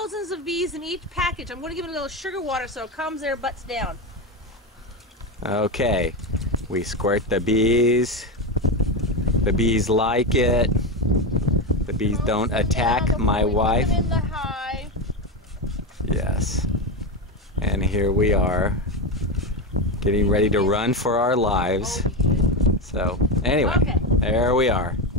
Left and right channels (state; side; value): normal; both; correlation 0.15